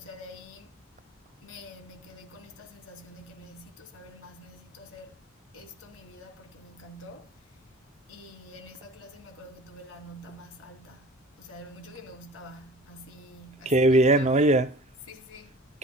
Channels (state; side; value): normal; both; correlation 0.43